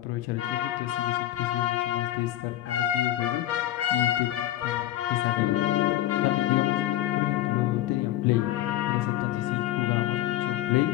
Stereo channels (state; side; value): quieter; right; 13.9 dB